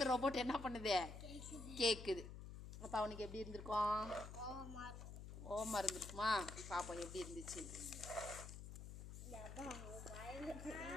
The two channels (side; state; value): left; noise; hum, 10 dB below the sound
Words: ரோபோட் என்ன பண்ணுது கேட்குது. அப்போ அவனுக்கு எப்படி இருந்திருக்கும், ஓமா இருந்திருக்குமா, பாப்போம் எப்படி இருந்துச்சு.